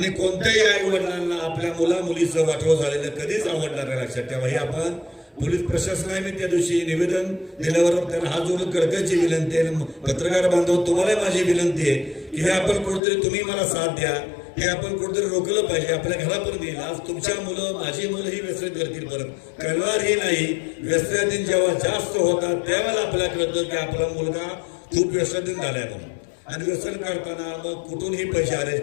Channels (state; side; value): drops out; right; at 13.0 s